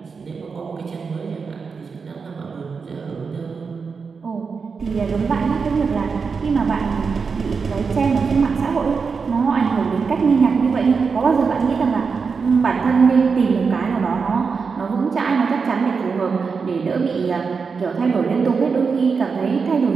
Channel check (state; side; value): quieter; left; 5.3 dB